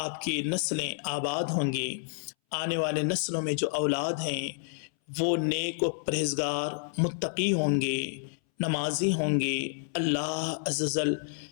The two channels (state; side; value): silent; right; 58 dB below the other